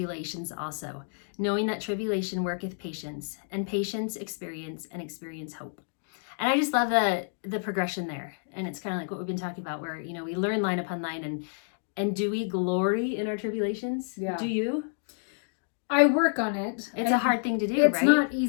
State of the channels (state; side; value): silent; right; digital silence